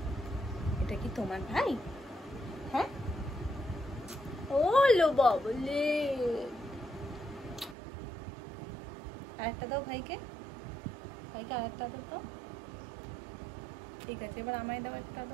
এটা কি তোমার ভাই? হ্যাঁ, ও লো বাবলে, আরেকটা দাও ভাইকে, ভাইকে আরেকটা আদর দাও। ঠিক আছে, এবার আমায় দাও একটা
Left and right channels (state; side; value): drops out; left; at 7.8 s